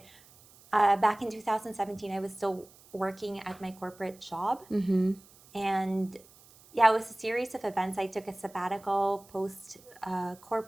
back in 2017, I was still working at my corporate job. And yeah, it was a series of events. I took a sabbatical post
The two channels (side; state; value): right; noise; hiss, 25 dB below the sound